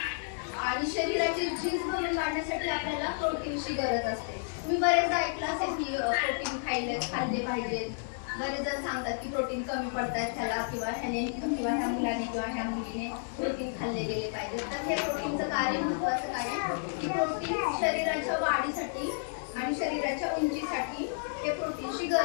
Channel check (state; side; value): silent; right; digital silence